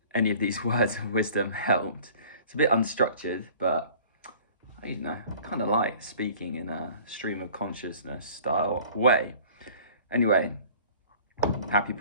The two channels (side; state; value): both; inverted; correlation -0.49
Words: any of these words of wisdom helped. It's a bit unstructured, but I kind of like speaking in a stream of consciousness style way. Anyway, happy